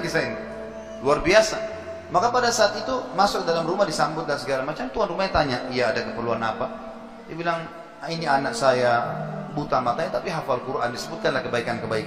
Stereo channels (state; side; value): identical; both; correlation 1.00